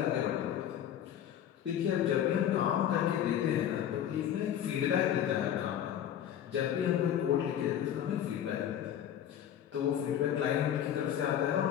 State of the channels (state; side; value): quieter; right; 10.2 dB